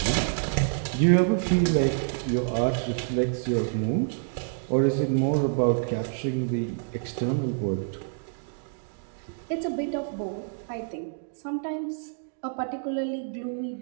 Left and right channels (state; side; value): silent; left; digital silence